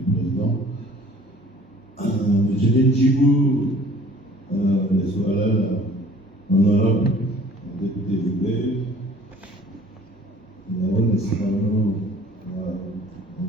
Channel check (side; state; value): both; normal; correlation 0.51